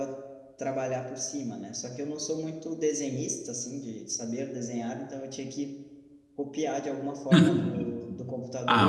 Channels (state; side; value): identical; both; correlation 1.00